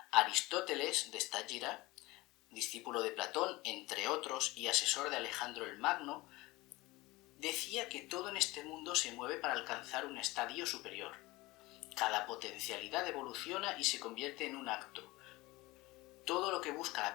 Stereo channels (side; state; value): right; quieter; 20.9 dB